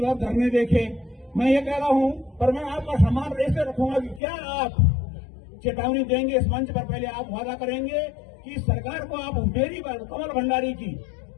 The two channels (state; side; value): drops out; right; at 4.2 s